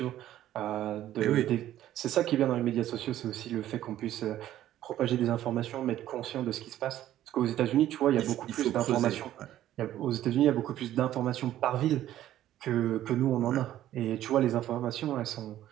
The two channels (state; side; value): quieter; left; 12.8 dB